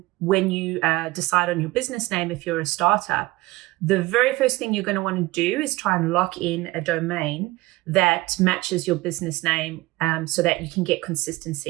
when you decide on your business name if you're a startup, the very first thing you're going to want to do is try and lock in a domain that matches your business name so that you can get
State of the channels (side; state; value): left; quieter; 20.1 dB